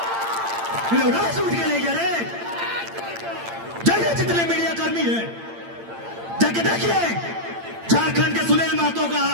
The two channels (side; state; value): left; late; 8.8 ms